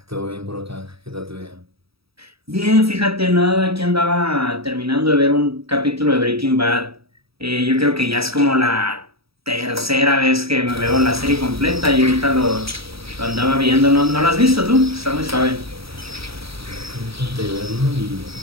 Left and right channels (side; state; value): left; late; 0.77 ms